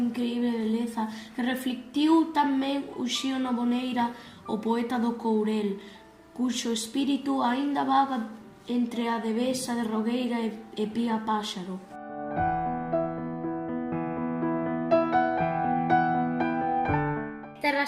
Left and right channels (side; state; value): both; identical; correlation 1.00